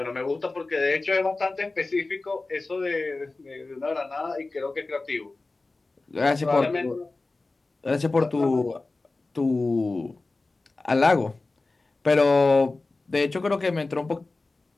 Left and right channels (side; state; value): right; quieter; 3.4 dB